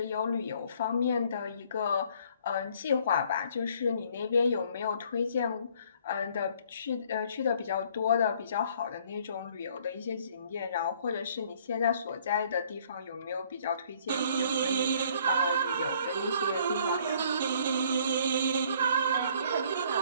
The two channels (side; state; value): both; inverted; correlation -0.60